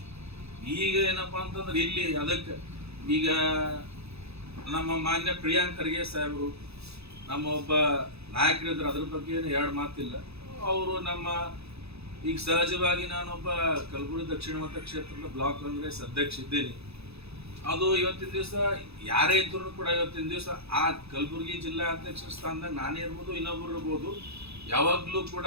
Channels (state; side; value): late; left; 0.79 ms